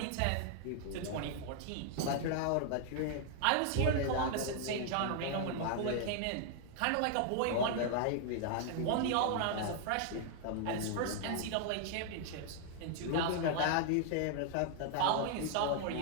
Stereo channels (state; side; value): different; both; correlation 0.00